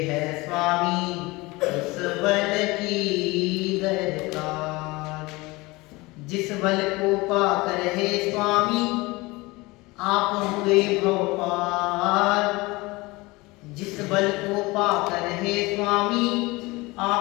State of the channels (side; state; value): right; quieter; 22.8 dB